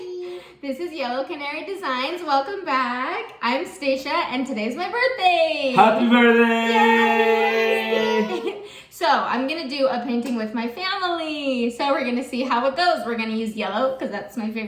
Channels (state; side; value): identical; both; correlation 1.00